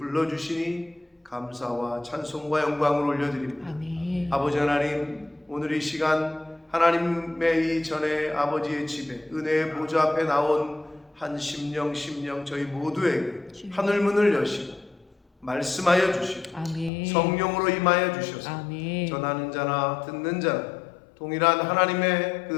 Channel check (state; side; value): drops out; right; at 16.9 s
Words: 감사와 찬송과 영광을 올려드립니다. 아멘. 아버지 하나님, 오늘 이 시간 하나님의 이 전에 아버지의 집에 은혜의 보좌 앞에 나온 한 심령 저희 모두에게 하늘문을 여시고 말씀하여 주시고 아멘. 성령으로 임하여 주셔서 아멘. 전하는 자나 듣는 자나 동일한 하나님의 그